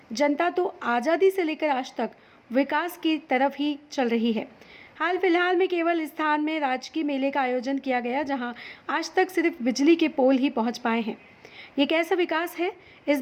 जनता तो आज़ादी से लेकर आज तक विकास की तरफ ही चल रही है। हाल फिलहाल में केवल स्थान में राजकीय मेले का आयोजन किया गया, जहां आज तक सिर्फ बिजली के पोल ही पहुंच पाए हैं। ये कैसा विकास है? इस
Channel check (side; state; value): both; identical; correlation 1.00